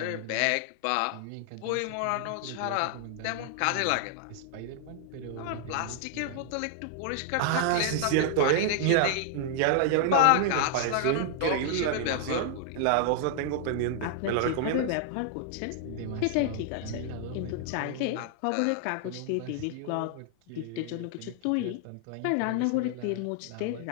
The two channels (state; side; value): different; both; correlation 0.00